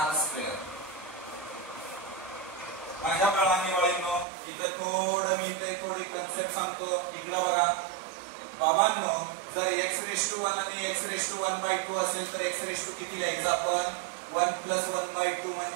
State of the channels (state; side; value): drops out; left; at 4.2 s